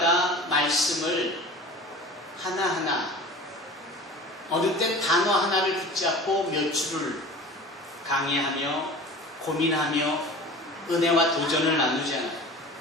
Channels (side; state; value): both; normal; correlation 0.38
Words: 말씀을 하나하나 어느 땐 단어 하나를 붙잡고 몇 줄을 강의하며 고민하며 은혜와 도전을 나누잖아요.